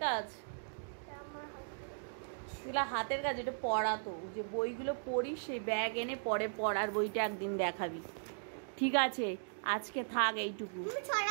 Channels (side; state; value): left; silent; digital silence